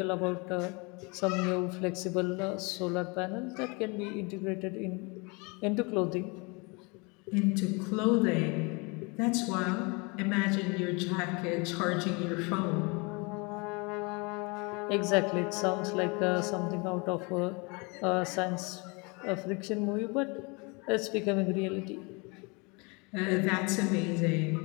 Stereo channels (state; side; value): quieter; right; 29.5 dB